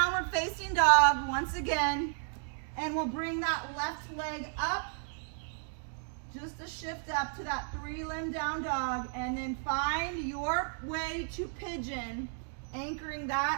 facing dog once again. And we'll bring that left leg up. Just a shift up to that 3-limb down dog. And then find your way to pigeon. Anchoring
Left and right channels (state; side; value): silent; left; 56 dB below the other